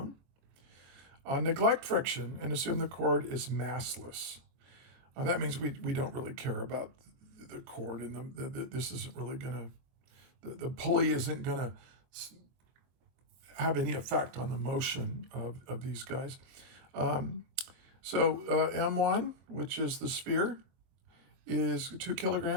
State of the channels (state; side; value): late; left; 23 ms